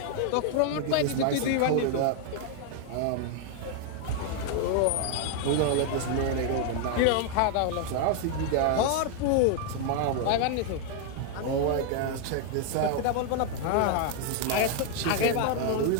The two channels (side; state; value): both; different; correlation 0.00